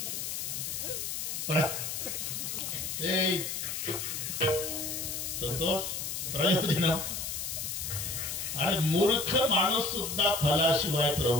संतोष प्रयोजन. अरे मूर्ख माणूस सुद्धा फलाशिवाय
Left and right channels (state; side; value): noise; left; hiss, 4 dB below the sound